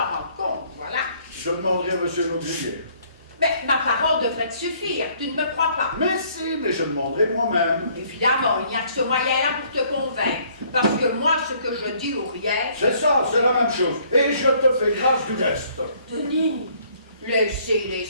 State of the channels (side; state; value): both; inverted; correlation -0.62